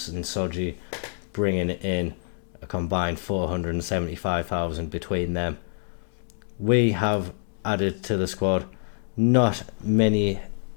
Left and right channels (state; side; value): silent; right; digital silence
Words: and Soji bringing in a combined 475,000 between them. We have added to the squad not many